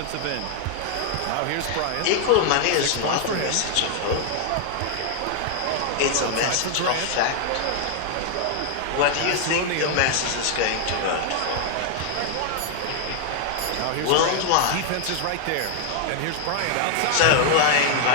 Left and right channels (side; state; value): both; different; correlation 0.00